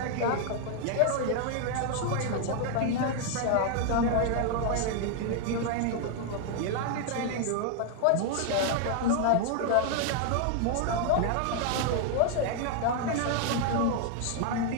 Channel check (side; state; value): both; different; correlation 0.00